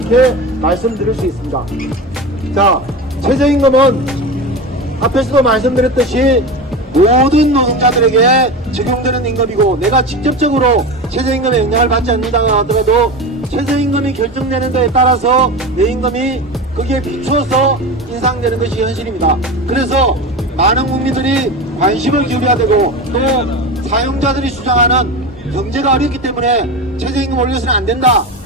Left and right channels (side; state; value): both; normal; correlation 0.25